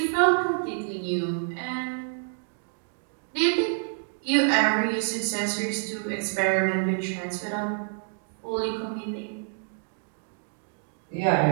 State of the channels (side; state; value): left; silent; digital silence